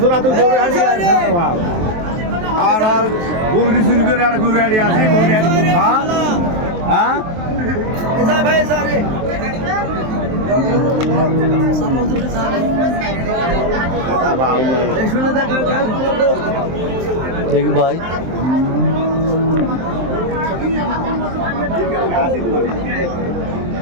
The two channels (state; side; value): late; left; 23 ms